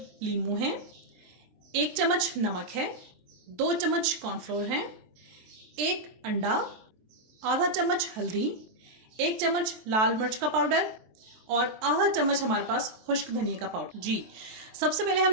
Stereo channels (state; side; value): late; left; 23 ms